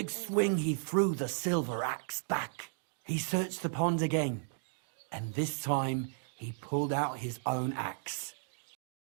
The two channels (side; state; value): left; silent; digital silence